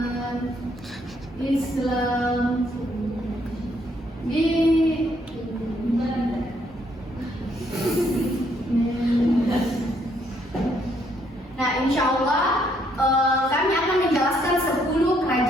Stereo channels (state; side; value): normal; both; correlation 0.70